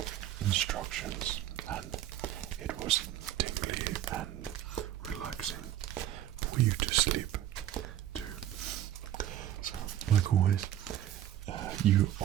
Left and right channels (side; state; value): left; quieter; 12.0 dB